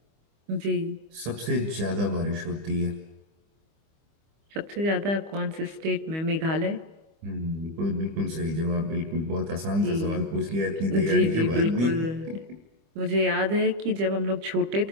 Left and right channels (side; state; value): left; late; 25 ms